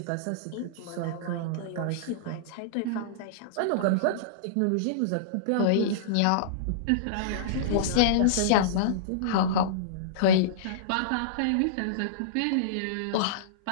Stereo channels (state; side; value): different; both; correlation -0.03